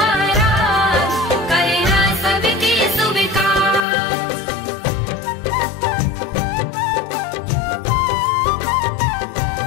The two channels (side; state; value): right; drops out; at 3.8 s